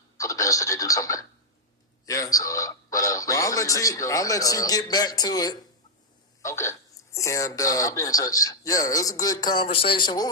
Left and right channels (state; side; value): normal; both; correlation -0.03